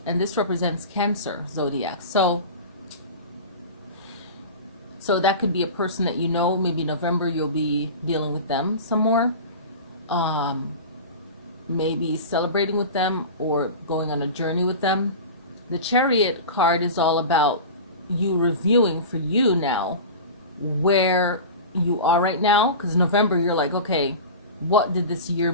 and this represents Cancer zodiac. So that could be a person that you know. Maybe November you'll be dealing with them some more. Maybe celebrating with them or going on a journey with them. The Chariot card is all about you reviewing for you now where you are right now. Because November, you're like, okay, what did this year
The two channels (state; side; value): inverted; both; correlation -0.31